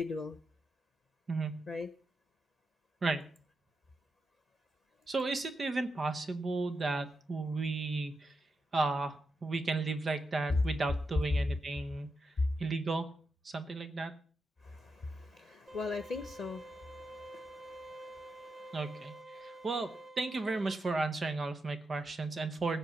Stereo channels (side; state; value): both; normal; correlation 0.86